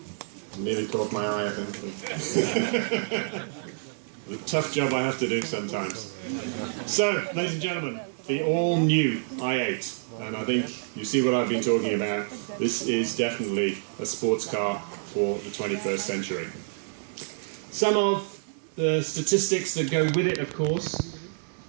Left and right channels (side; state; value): left; silent; 60 dB below the other